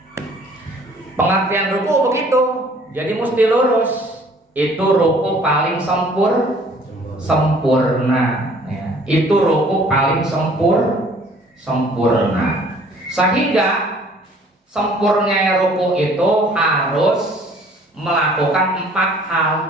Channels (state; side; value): normal; both; correlation 0.55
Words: Pengertian ruku begitu, jadi mesti lurus. Itu ruku paling sempurna ya. Itu ruku paling sempurna. Sehingga sempurnanya ruku itu harus melakukan 4